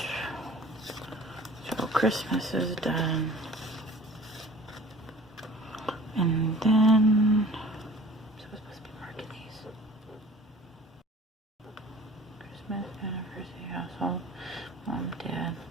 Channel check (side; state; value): both; normal; correlation 0.46